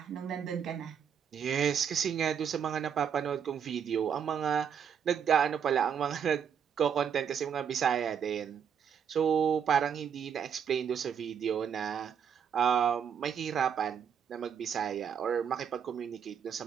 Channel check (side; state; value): left; quieter; 7.7 dB